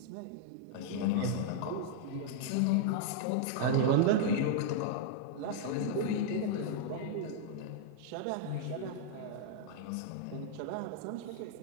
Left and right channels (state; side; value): different; both; correlation -0.01